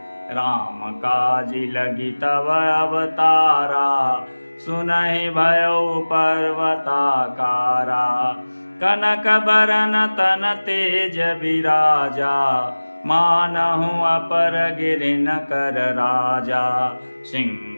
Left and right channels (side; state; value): both; inverted; correlation -1.00